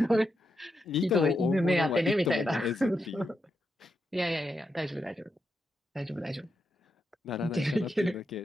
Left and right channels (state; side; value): normal; both; correlation 0.85